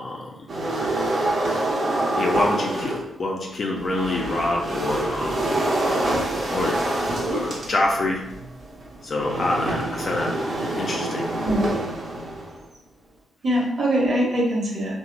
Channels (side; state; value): both; normal; correlation 0.80